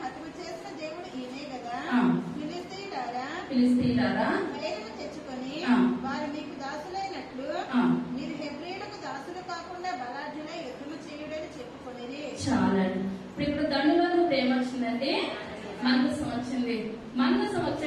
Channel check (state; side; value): identical; both; correlation 1.00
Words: హతము చేసిన దేవుడు ఈయనే కదా. ఫిలిస్తీయులారా ధైర్యం తెచ్చుకొని వారు మీకు దాసులైనట్లు మీరు హెబ్రీయులకు దాసులు కాకుండా బలాఢ్యులై యుద్ధము చేయుడని చెప్పుకొనిరి. చాలండి. ఇప్పుడు దండులోని ప్రేమ వచ్చిందండి, మందసం వచ్చింది. మందసం